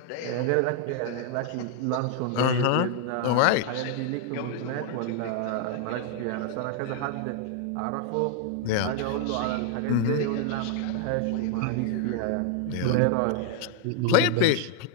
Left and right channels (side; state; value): both; different; correlation 0.00